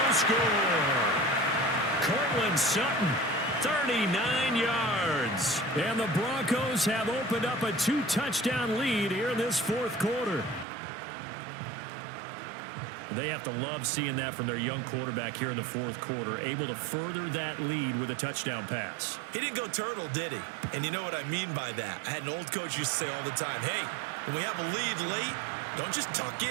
score. Cortland Sutton, 39 yards. And the Broncos have opened up a 2-touchdown lead here in this 4th quarter. They have to love seeing that from their young quarterback here in the 4th quarter, able to further that lead with a touchdown pass. He didn't go turtle, did he? And you know what I mean by that. I had an old coach used to say all the time, hey, when we have a lead late, don't just tuck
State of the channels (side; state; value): left; drops out; at 10.7 s